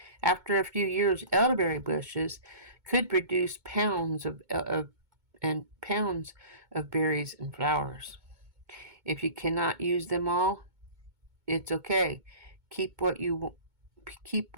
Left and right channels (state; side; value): late; left; 2.2 ms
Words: After a few years, elderberry bushes could produce pounds of berries and flowers. If you cannot use them all, it's okay. Keep what you